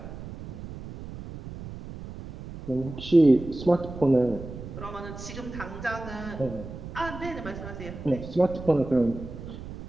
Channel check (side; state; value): right; noise; rumble, 11 dB below the sound